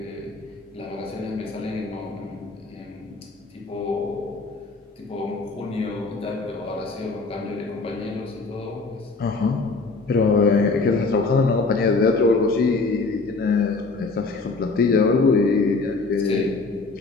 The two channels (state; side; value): quieter; right; 3.8 dB